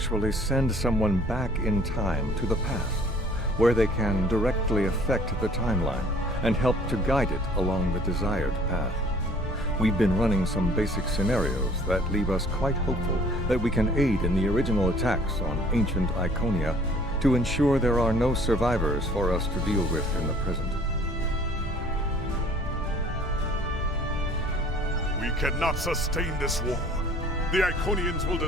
send someone back in time to the past, where they can directly affect the timeline and help to guide it along the desired path. We've been running some basic scenarios that leave us quite hopeful that we can aid in the original attacks on ancient Iconia to ensure there are no survivors for us to deal with in the present. We cannot sustain this war. The Iconians will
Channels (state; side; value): normal; both; correlation 0.54